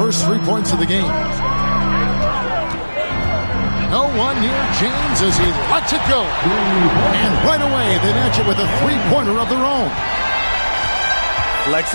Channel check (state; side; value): inverted; both; correlation -1.00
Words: 3 points of the game. No one near James as he lets it go. And right away, they match it with a 3-pointer of their own.